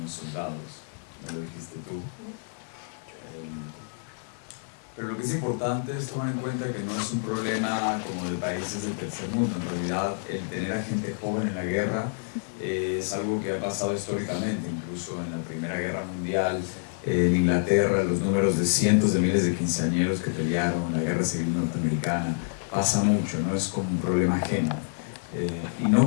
Soldados, me lo dijiste tú. Pero lo que es importante es tomar en cuenta que no es un problema como de países del tercer mundo. En realidad, el tener a gente joven en la guerra es algo que ha pasado históricamente, incluso en la Primera Guerra Mundial, en Inglaterra, los números de cientos de miles de quinceañeros que pelearon en la Guerra Civil Norteamericana, pasa mucho, no es como un problema ajeno. Y no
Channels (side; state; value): right; silent; digital silence